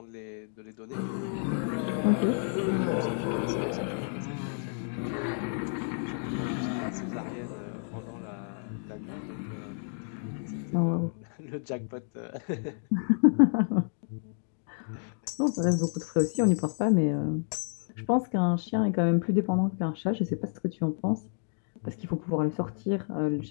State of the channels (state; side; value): silent; right; 58 dB below the other